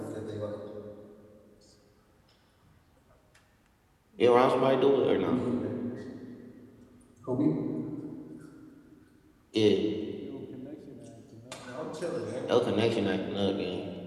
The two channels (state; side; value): identical; both; correlation 1.00